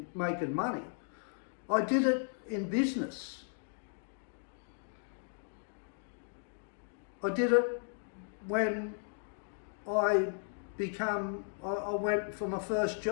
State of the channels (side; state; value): right; silent; digital silence